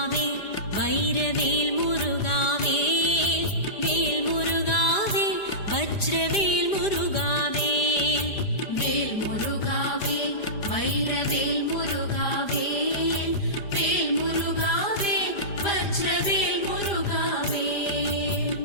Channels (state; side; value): late; right; 5.0 ms